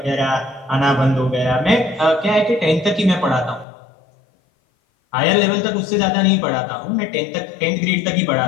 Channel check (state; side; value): drops out; right; at 3.7 s